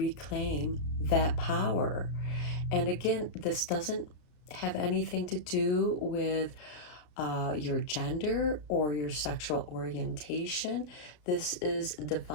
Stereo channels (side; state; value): right; late; 33 ms